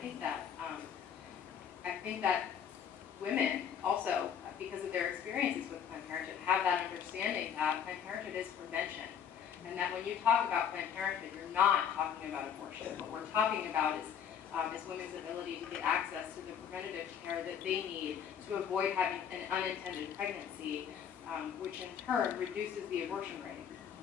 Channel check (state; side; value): quieter; right; 8.2 dB